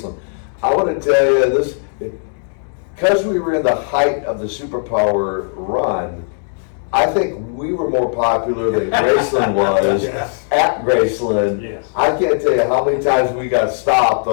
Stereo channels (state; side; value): silent; right; 68 dB below the other